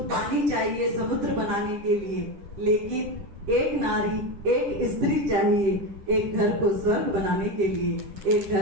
पानी चाहिए समुद्र बनाने के लिए, लेकिन एक नारी, एक स्त्री चाहिए एक घर को स्वर्ग बनाने के लिए, एक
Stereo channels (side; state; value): left; late; 10 ms